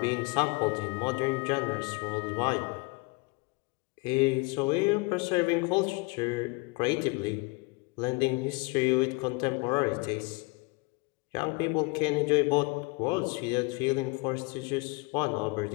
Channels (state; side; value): quieter; right; 27.8 dB